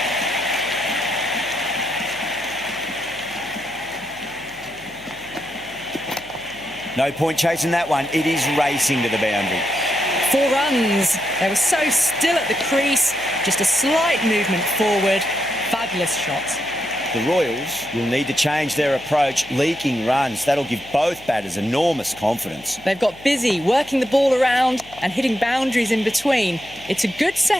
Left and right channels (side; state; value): left; noise; hum, 23 dB below the sound